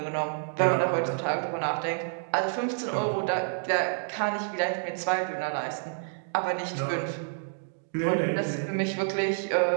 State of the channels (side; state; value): left; silent; digital silence